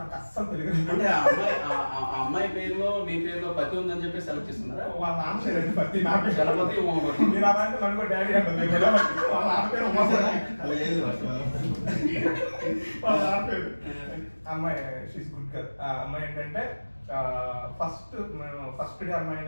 అస్సలు తెలుగు అంటే అమ్మాయి పేరులో మీ పేరులో పతి ఉందని చెప్పి సెలెక్ట్ చేస్తున్నారా? వాళ్ళ నాన్న పేరు పతి, నా పేరు గణపతి ఉమాపతి. మీరు అలాంటి నన్ను డాడీ అంటుంది. వాళ్ళ నాన్న పేరు ఉమాపతి. వాళ్ళ నాన్న పేరు అమ్మాయి షీస్ గుడ్ గర్ల్. అమ్మాయి ఏంటంటే ఫస్ట్ డే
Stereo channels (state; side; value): inverted; both; correlation -1.00